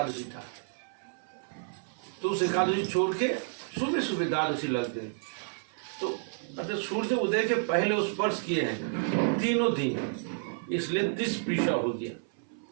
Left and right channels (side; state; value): left; silent; 57 dB below the other